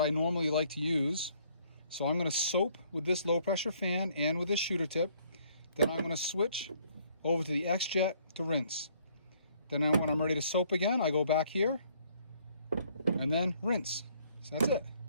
I normally like to use. So I'm going to soap with this low pressure fan and with this shooter tip. Then I'm going to switch over to the X-Jet to rinse. Then when I'm ready to soap again, I go back here and then rinse. So that's it.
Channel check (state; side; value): inverted; both; correlation -0.64